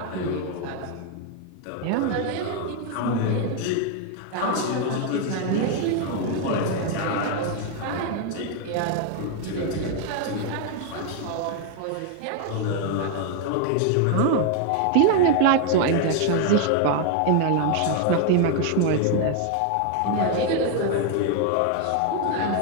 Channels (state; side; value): different; both; correlation 0.01